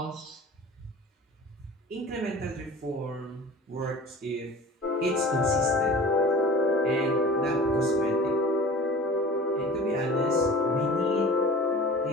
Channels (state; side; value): normal; both; correlation 0.40